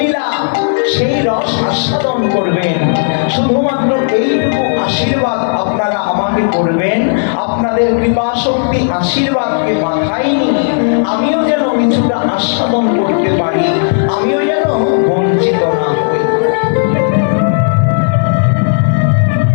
সেই রস আস্বাদন করবেন। শুধুমাত্র এইটুকু আশীর্বাদ আপনারা আমাকে করবেন। আপনাদের কৃপা শক্তি আশীর্বাদকে মাথায় নিয়ে আমিও যেন কিছুটা আস্বাদন করতে পারি, আমিও যেন বঞ্চিত না হই।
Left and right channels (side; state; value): right; silent; digital silence